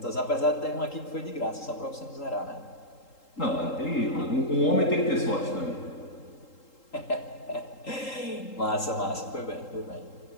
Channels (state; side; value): late; right; 3.8 ms